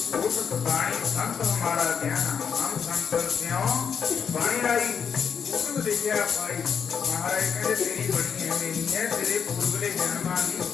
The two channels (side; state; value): right; quieter; 7.0 dB